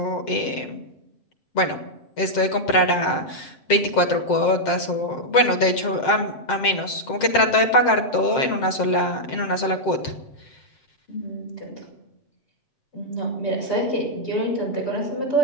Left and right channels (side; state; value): right; late; 7.6 ms